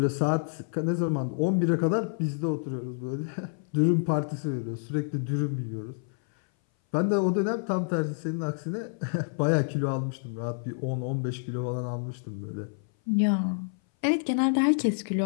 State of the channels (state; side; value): silent; right; 58 dB below the other